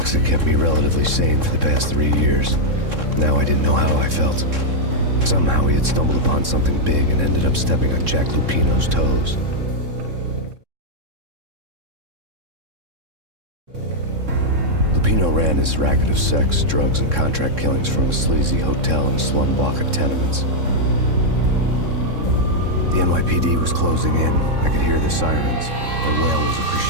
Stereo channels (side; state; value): left; late; 3.7 ms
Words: Alex had kept me relatively sane for the past 3 years. Now I didn't know how I felt. Somehow he had stumbled upon something big and ended up stepping on Jack Lupino's toes. Lupino ran his racket of sex, drugs, and contract killings from a sleazy hotel in a slum block of tenements. The NYPD was closing in. I could hear the sirens. Their wail was a